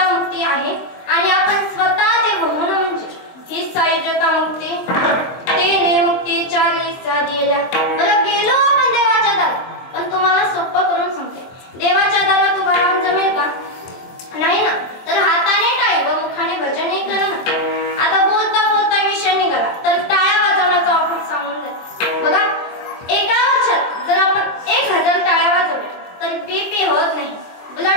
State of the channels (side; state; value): right; late; 23 ms